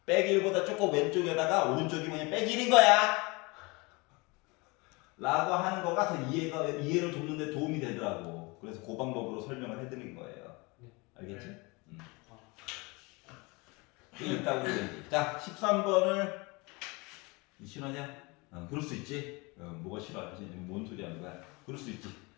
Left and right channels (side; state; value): right; quieter; 26.5 dB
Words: 빼기 1보다 조금 왼쪽에다가 오른쪽이 뭐냐 빼기 1인 거야 라고 하는 거가 더 이해를 돕는 데 도움이 되더라고. 그래서 그 방법으로 설명을 해드린 거예요. 알겠지? 네. 이게 있다고 얘기. 자 13번을 싫어하냐? 그럴 수 있지. 뭐가 싫어하지? 뭔 소리 하는 거야? 그럴 수 있지.